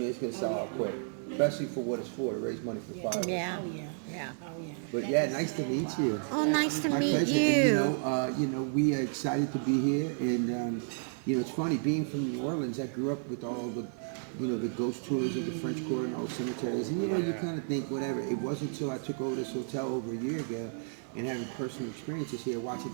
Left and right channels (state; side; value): silent; left; digital silence